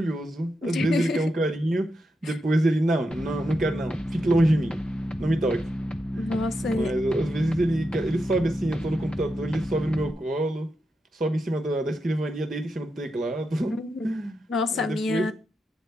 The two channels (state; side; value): normal; both; correlation 0.86